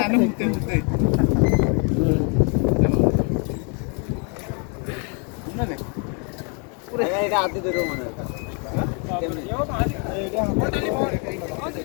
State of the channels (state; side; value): quieter; right; 36.4 dB